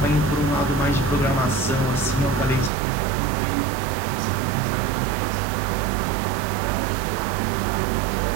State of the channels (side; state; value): left; drops out; at 2.7 s